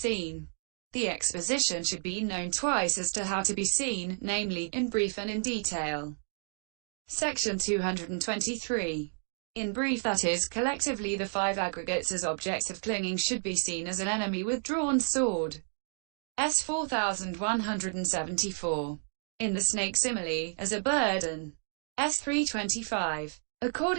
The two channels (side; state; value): left; silent; 57 dB below the other